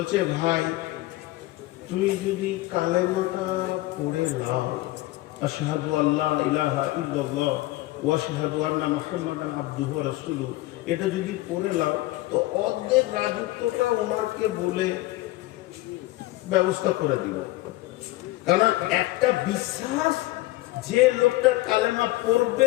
ভাই তুই যদি কালেমাটা পড়ে নাও, আশহাদু আল্লা ইলাহা ইল্লাল্লাহ ওয়া আশহাদু আন্না মুহাম্মাদান আবদুহু ওয়া রাসূলুহু, এটা যদি পড়ে নাও তো অর্ধেক রাজত্বটা ওমরকে বলে ব্যবস্থা করে দিব। কারণ একটা বিশ্বাস, যে লোকটা কালেমা পড়বে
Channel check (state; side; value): quieter; right; 18.5 dB